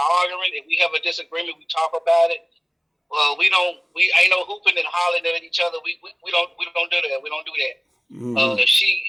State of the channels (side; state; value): both; identical; correlation 1.00